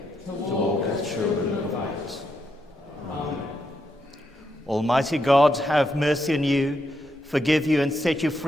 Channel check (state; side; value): normal; both; correlation 0.81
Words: to walk as children of light. Amen. Almighty God, have mercy on you, forgive you, and set you